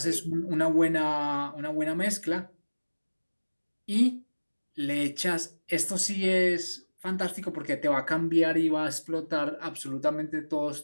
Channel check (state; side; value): inverted; both; correlation -1.00